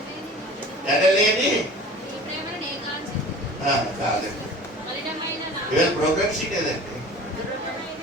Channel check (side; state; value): both; normal; correlation 0.41